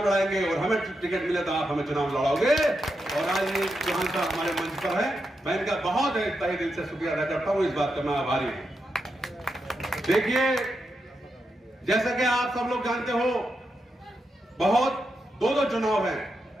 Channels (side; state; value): both; normal; correlation 0.85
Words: लड़ाएंगे, और हमें टिकट मिले तो आप हमें चुनाव लड़ाओगे। और आज ये चौहान साहब हमारे मंच पर है, मैं इनका बहुत तहे दिल से शुक्रिया अदा करता हूं, इस बात का मैं आभारी हूं। देखिए, जैसा कि आप सब लोग जानते हो, बहुत दो चुनाव हैं,